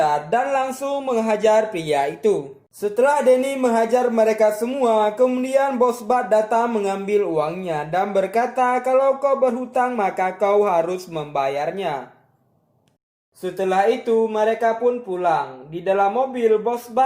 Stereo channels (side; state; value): both; identical; correlation 1.00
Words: dan langsung menghajar pria itu. Setelah Danny menghajar mereka semua, kemudian Bos Bart datang mengambil uangnya dan berkata kalau kau berhutang maka kau harus membayarnya. Setelah itu, mereka pun pulang. Di dalam mobil, Bos